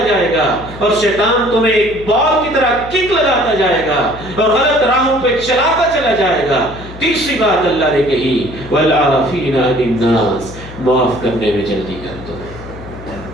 جائے گا، اور شیطان تمہیں ایک بال کی طرح کک لگاتا جائے گا اور غلط راہوں پہ چلاتا چلا جائے گا۔ تیسری بات اللہ نے کہی، وَالْعَافِينَ عَنِ النَّاسِ، معاف کرنے میں جلدی کر دو،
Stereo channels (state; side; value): noise; left; hum, 15 dB below the sound